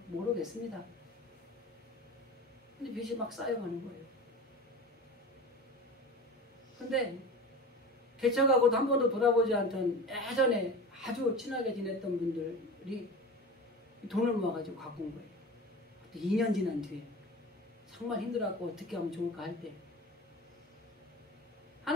모르겠습니다. 근데 빚이 막 쌓여가는 거예요. 근데 개척하고도 한 번도 돌아보지 않던 예전에 아주 친하게 지냈던 분들이 돈을 모아가지고 갖고 온 거예요. 2년 지난 뒤에 정말 힘들어갖고 어떻게 하면 좋을까 할 때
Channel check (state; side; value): normal; both; correlation 0.33